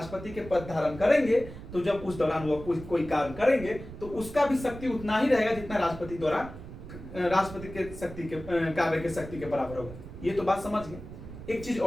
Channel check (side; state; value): right; noise; rumble, 13 dB below the sound